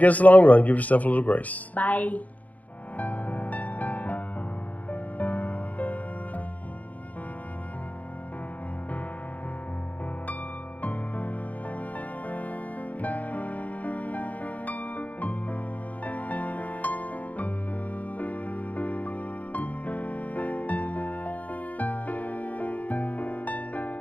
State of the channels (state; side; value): late; right; 0.075 ms